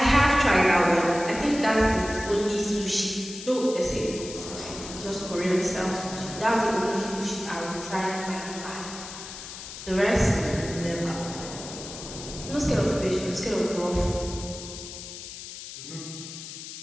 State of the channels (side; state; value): left; noise; hiss, 11 dB below the sound